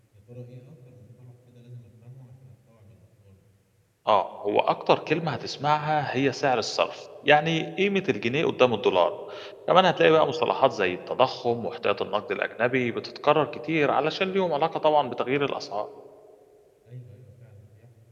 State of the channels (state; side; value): identical; both; correlation 1.00